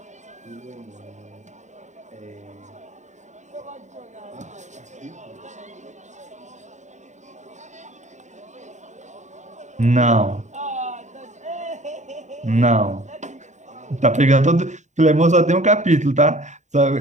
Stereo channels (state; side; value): late; left; 0.34 ms